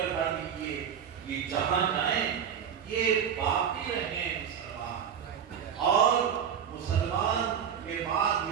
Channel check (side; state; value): left; quieter; 8.1 dB